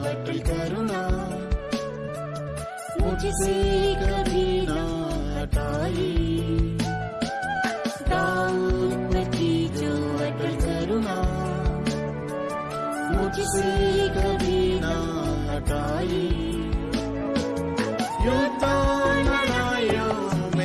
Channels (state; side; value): identical; both; correlation 1.00